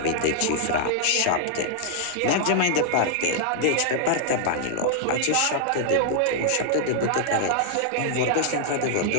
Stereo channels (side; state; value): both; different; correlation -0.01